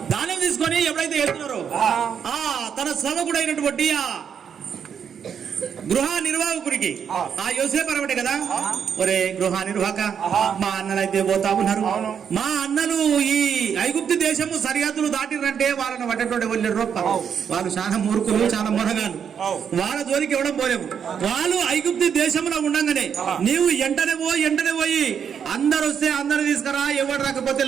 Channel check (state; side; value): quieter; left; 7.6 dB